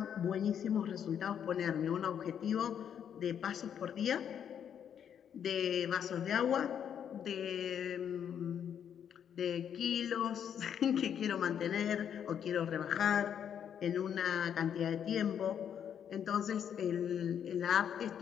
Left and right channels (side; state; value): right; quieter; 8.7 dB